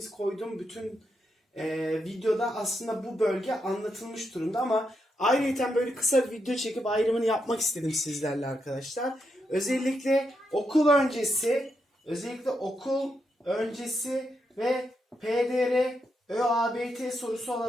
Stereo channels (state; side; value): normal; both; correlation 0.83